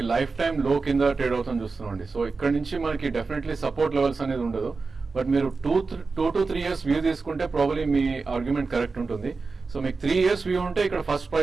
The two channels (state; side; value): quieter; left; 4.2 dB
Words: లైఫ్ టైం లో కింద ట్రేడ్ అవుతుంది చూస్తున్నాండి. సో ఇక్కడ నుంచి మనకి డెఫినెట్లీ సపోర్ట్ లెవెల్స్ అనేది ఉండదు. బట్ మీరు 2 to 3 years వ్యూ తీసుకుంటే ప్రాబబ్లీ మీ ఆర్గ్యుమెంట్ కరెక్ట్ ఉంటుంది. సో మీకు 3 years వ్యూ ఉంటే ఇక్కడ ఫస్ట్